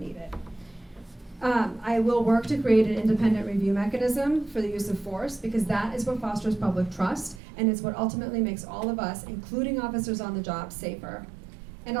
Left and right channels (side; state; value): left; drops out; at 7.4 s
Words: it. I will work to create an independent review mechanism for the use of force, because that is what fosters public trust, and it's what ultimately makes all of us, including officers on the job, safer. And